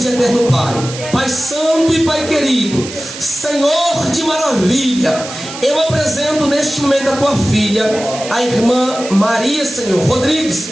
e eterno Pai, Pai santo e Pai querido, Senhor de maravilha, eu apresento neste momento a tua filha, a irmã Maria, Senhor,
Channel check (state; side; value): noise; right; hiss, 11 dB below the sound